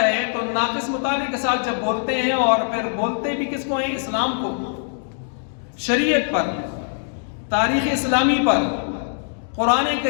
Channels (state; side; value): silent; right; digital silence